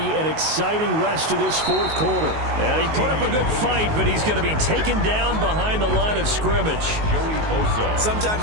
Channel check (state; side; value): late; left; 19 ms